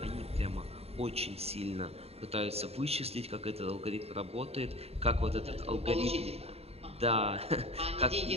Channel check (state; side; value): late; left; 0.29 ms